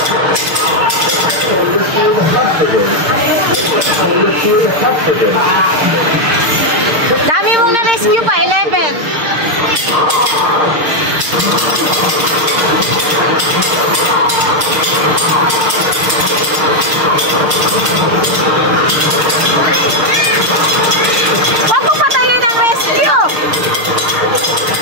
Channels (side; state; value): left; late; 6.6 ms